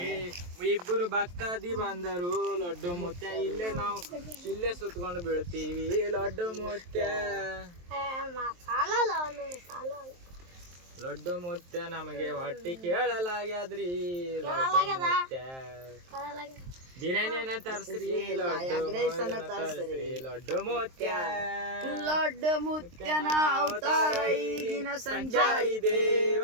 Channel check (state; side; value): late; left; 23 ms